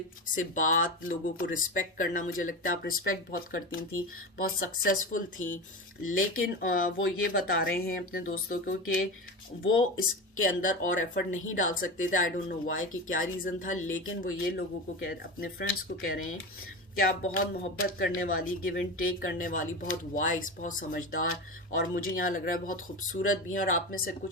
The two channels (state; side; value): normal; both; correlation 0.24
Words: से बात, लोगों को रिस्पेक्ट करना, मुझे लगता है आप रिस्पेक्ट बहुत करती थी, बहुत सक्सेसफुल थी। लेकिन वो ये बता रहे हैं अपने दोस्तों को कि वो इसके अंदर और एफर्ट नहीं डाल सकते थे। आई डोंट नो व्हाई, कि क्या रीज़न था, लेकिन वो ये लोगों को अपने फ्रेंड्स को कह रहे हैं कि आप बहुत मोहब्बत करने वाली, गिव एंड टेक करने वाली, बहुत वाइस, बहुत समझदार, और मुझे यहाँ लग रहा है बहुत खूबसूरत भी हैं। और आप में से